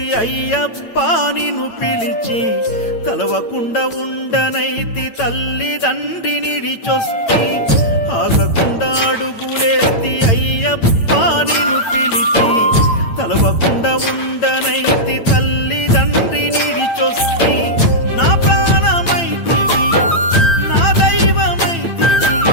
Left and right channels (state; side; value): late; right; 8.9 ms